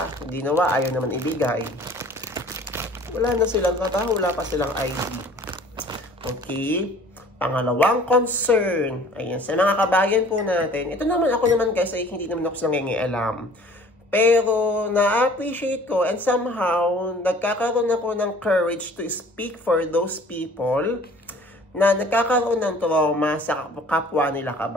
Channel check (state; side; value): normal; both; correlation 0.50